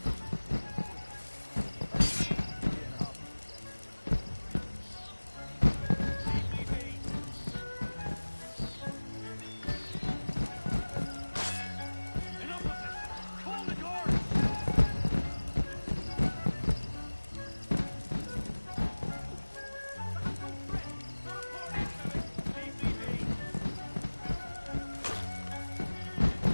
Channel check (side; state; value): both; inverted; correlation -1.00